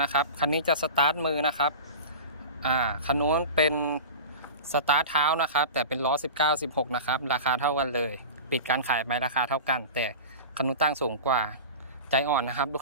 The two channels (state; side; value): inverted; both; correlation -0.32